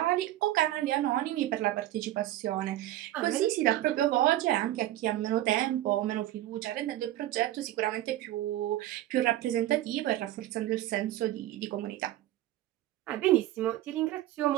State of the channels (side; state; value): left; quieter; 14.5 dB